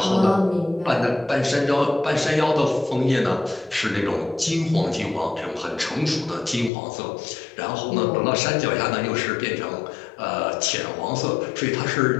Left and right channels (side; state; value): right; drops out; at 6.7 s